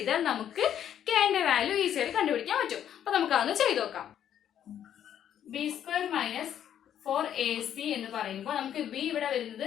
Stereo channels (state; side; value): quieter; right; 10.0 dB